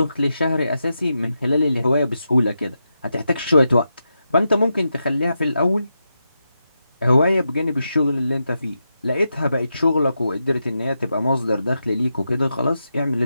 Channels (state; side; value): inverted; both; correlation -0.87